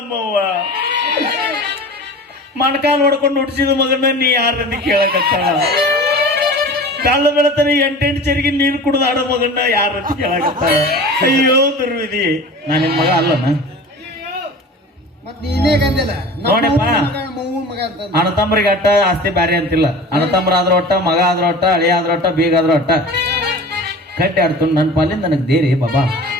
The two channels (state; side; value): normal; both; correlation 0.38